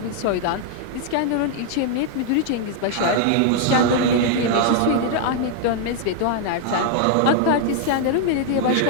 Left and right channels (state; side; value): different; both; correlation 0.00